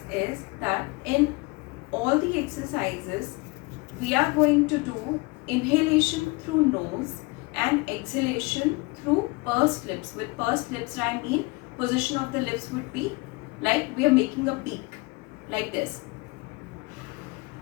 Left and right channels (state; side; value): quieter; right; 26.1 dB